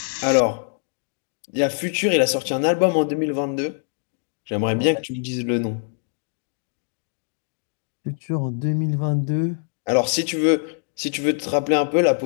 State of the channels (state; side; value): silent; right; 63 dB below the other